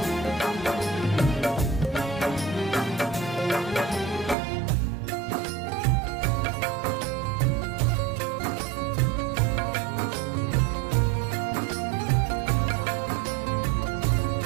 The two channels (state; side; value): drops out; left; at 4.4 s